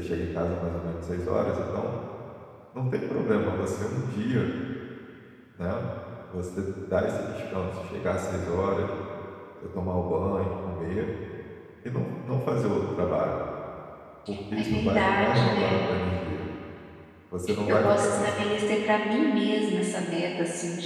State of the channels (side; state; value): both; identical; correlation 1.00